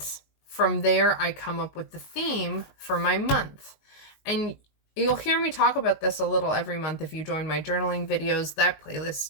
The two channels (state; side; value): late; right; 19 ms